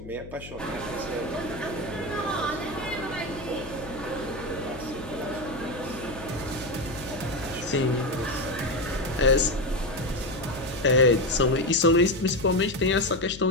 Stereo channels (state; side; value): noise; left; hum, 14 dB below the sound